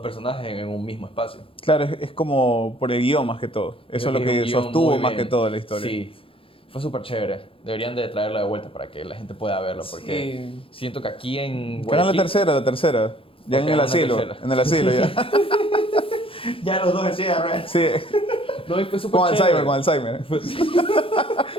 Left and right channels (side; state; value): right; late; 0.26 ms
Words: en un mismo espacio. Claro, es como por el guión más que todo. Eso es lo un que guión sostuvo muy más bien. que todo la historia. Sí, fue súper chévere. Deberían de traerla de vuelta para que la gente pueda verlo, porque Sí. siento que aquí en Que era la Guayaquil... tercera. Ya Ok, en el una asilo. tercera. En el asilo ya. ya los dos así, ¿verdad? Sí, No, y fue súper con chévere. Alzheimer, con Alzheimer.